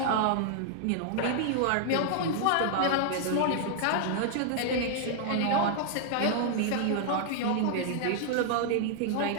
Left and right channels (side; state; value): both; different; correlation -0.01